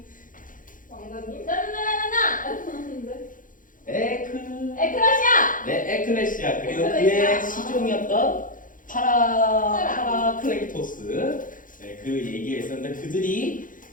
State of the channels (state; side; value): late; right; 0.39 ms